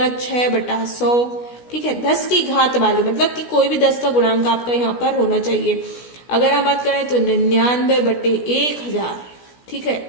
6/100। ठीक है, 10 की घात वाली, मतलब कि कोई भी 10 का गुणांक आपका यहाँ पर होना चाहिए। अगर हम बात करें तो 99/1000। ठीक है,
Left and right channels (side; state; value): right; late; 16 ms